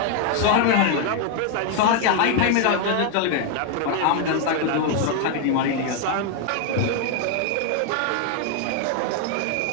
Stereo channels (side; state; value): both; different; correlation 0.01